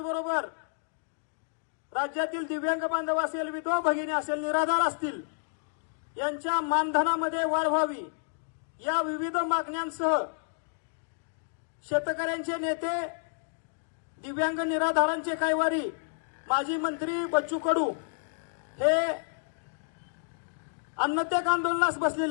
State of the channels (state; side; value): silent; right; digital silence